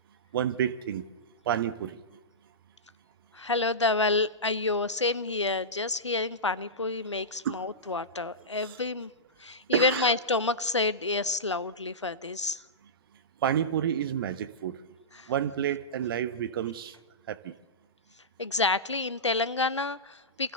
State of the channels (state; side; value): normal; both; correlation -0.17